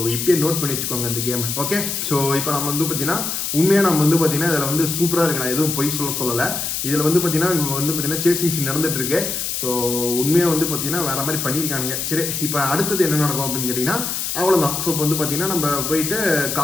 இப்போயே நோட் பண்ணி வச்சுக்கோங்க இந்த கேம். ஓகே, ஸோ இப்போ நம்ம வந்து பார்த்தீங்கன்னா உண்மையாக நம்ம வந்து பார்த்தீங்கன்னா இதில் வந்து சூப்பராக இருக்கு. நான் எதுவும் பொய் சொல்லலை. இதில் வந்து பார்த்தீங்கன்னா இப்போ வந்து பார்த்தீங்கன்னா சேசிங் சீன் நடந்துட்டு இருக்கு. ஸோ உண்மையாக வந்து பார்த்தீங்கன்னா வேற மாதிரி பண்ணியிருக்கானுங்க. சரி, இப்போ அடுத்தது என்ன நடக்கும் அப்படின்னு கேட்டிங்கன்னா அவ்வளோதான். ஸோ இப்போ வந்து பார்த்தீங்கன்னா நம்ம போயிட்டு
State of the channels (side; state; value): left; noise; hiss, 2 dB below the sound